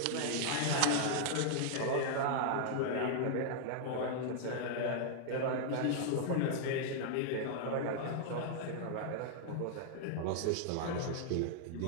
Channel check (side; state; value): both; different; correlation -0.01